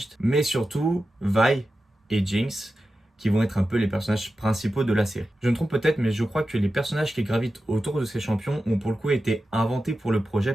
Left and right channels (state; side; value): normal; both; correlation 0.92